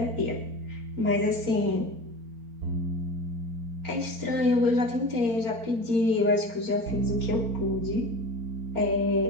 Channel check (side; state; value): left; late; 4.3 ms